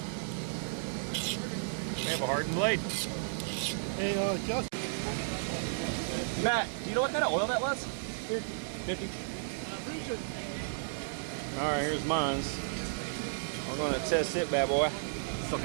We have a hardened blade. Hey, Justin. Matt, do you know what kind of oil that was? Here, 50. All right, here's mine's. We're gonna test it, bad boy. Still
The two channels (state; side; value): silent; left; digital silence